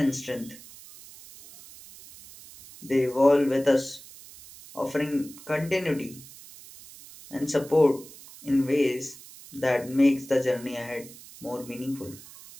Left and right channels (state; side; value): noise; right; hiss, 19 dB below the sound